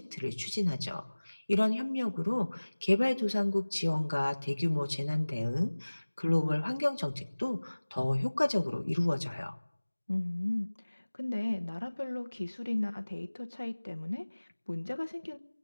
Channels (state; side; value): inverted; both; correlation -1.00